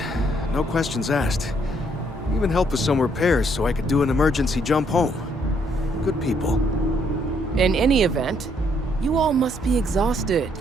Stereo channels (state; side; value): normal; both; correlation 0.69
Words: no questions asked. Even helped with some repairs so I could do an emergency jump home. Good people. In any event, you all must be exhausted.